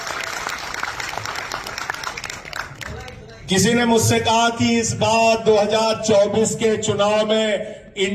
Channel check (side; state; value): both; identical; correlation 1.00